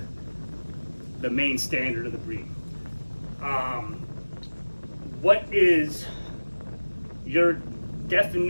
the main standard of the breed. What is your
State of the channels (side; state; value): both; inverted; correlation -1.00